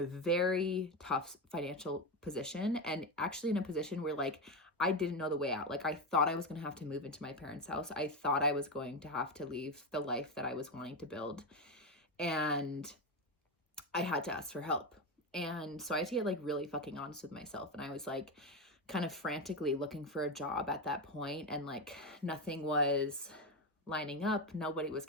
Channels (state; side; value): normal; both; correlation 0.14